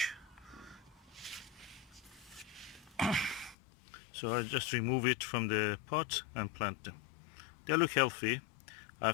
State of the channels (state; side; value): drops out; right; at 3.6 s